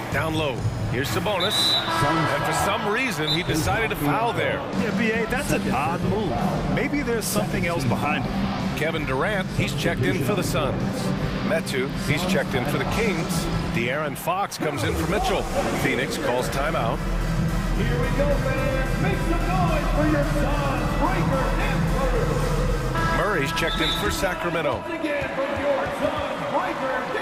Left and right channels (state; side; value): identical; both; correlation 1.00